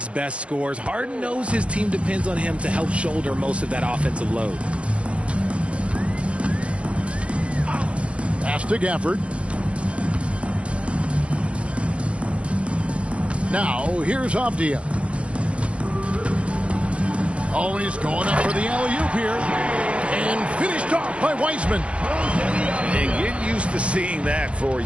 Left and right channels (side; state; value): left; late; 0.060 ms